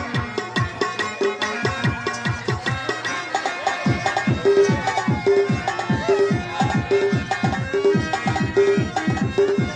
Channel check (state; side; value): identical; both; correlation 1.00